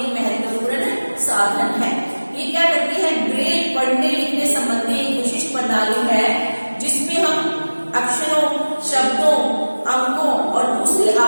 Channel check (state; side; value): inverted; both; correlation -1.00